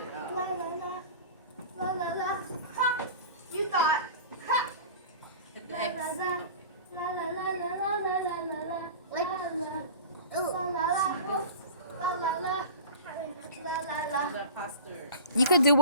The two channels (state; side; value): inverted; both; correlation -0.37